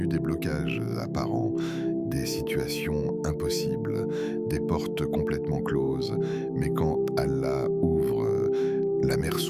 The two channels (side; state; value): both; identical; correlation 1.00